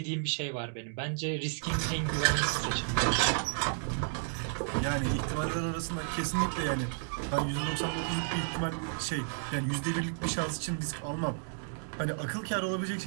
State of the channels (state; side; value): silent; left; digital silence